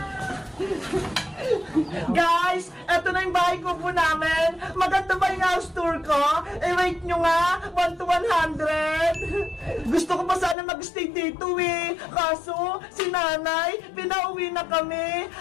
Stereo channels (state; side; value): drops out; right; at 10.6 s